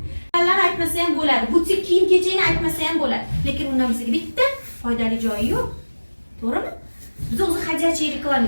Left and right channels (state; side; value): inverted; both; correlation -1.00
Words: Ularni aytmasa ham bo'ladi. Butik kiyim-kechakni aytmasa ham bo'ladi. Lekin undan bizga bitta foydali joyi yo'q. To'g'rimi? Biz o'zi hajatchi